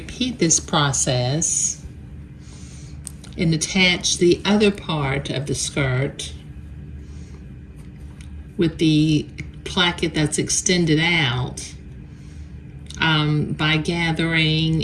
this process and attach the other part of the skirt with the placket that's extended out by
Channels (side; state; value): both; identical; correlation 1.00